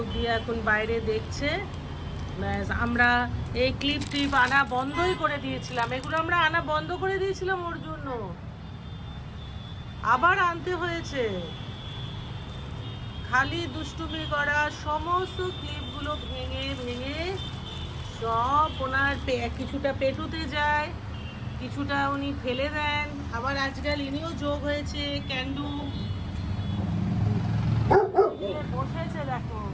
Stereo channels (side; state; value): both; identical; correlation 1.00